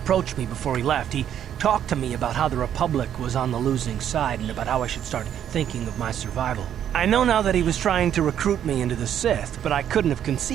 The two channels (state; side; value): quieter; left; 9.9 dB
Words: me before he left. He talked to me about how the Republic was on the losing side and about how I should start thinking of my survival. I know now that he was trying to recruit me into the Sith, but I couldn't have